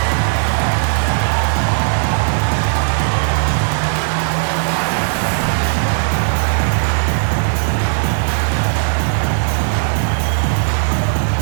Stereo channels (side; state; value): left; silent; 58 dB below the other